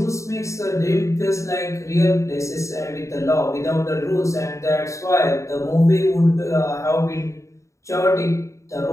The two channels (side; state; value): right; late; 0.15 ms